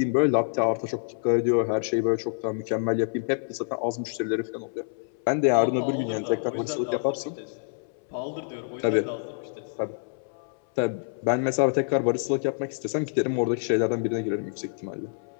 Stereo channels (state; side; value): silent; right; 60 dB below the other